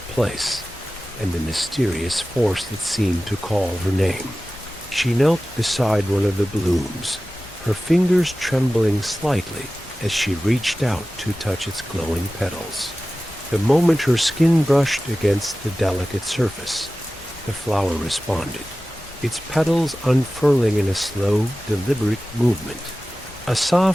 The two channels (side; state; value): right; noise; hum, 28 dB below the sound